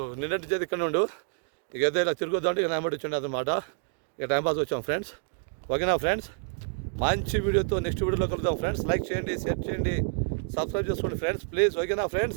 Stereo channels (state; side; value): silent; left; digital silence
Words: నిన్నటి చేతి ఇక్కడ ఉండు, ఇక ఏదో ఇలా తిరుగుద్దాంటే ఇక నాయమటి వచ్చిండు అనమాట. ఇక టైంపాస్ వచ్చాం ఫ్రెండ్స్. ఓకేనా ఫ్రెండ్స్, మంచి వీడియోతో నెక్స్ట్ వీడియోలో కలుద్దాం ఫ్రెండ్స్. లైక్ చేయండి, షేర్ చేయండి, సబ్స్క్రైబ్ చేసుకోండి ఫ్రెండ్స్ ప్లీజ్. ఓకేనా